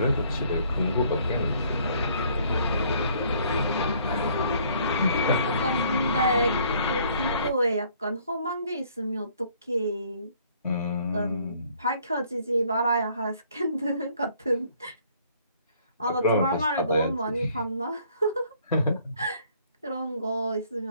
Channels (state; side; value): inverted; both; correlation -0.62